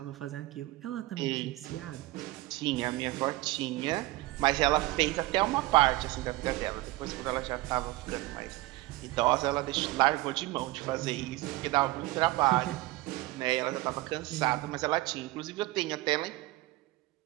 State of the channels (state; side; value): quieter; left; 19.5 dB